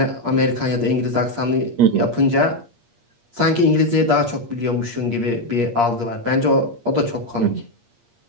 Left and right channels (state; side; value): late; left; 8.5 ms